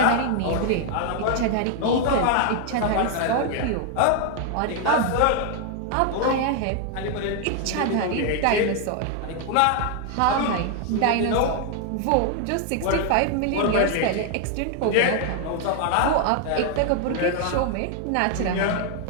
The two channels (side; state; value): both; different; correlation 0.00